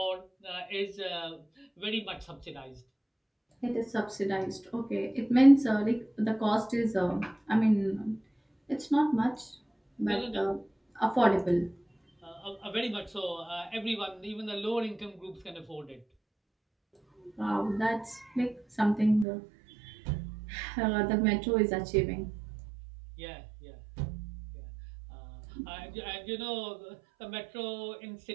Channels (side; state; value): left; drops out; at 19.2 s